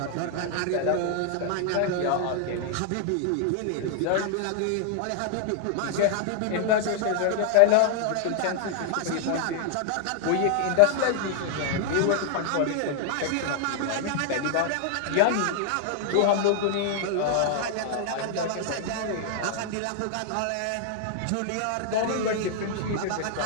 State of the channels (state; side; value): different; both; correlation 0.00